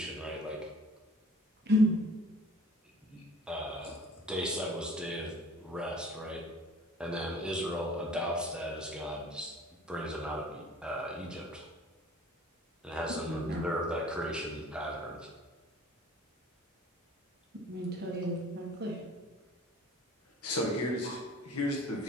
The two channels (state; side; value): normal; both; correlation 0.48